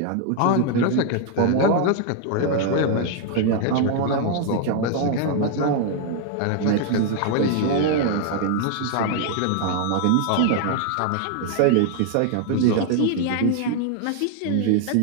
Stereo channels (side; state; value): both; different; correlation 0.00